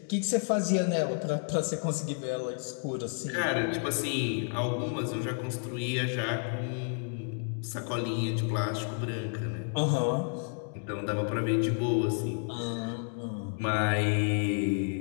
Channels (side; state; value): right; silent; 56 dB below the other